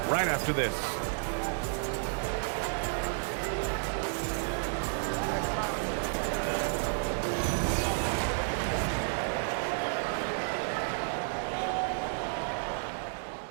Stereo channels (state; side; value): silent; left; digital silence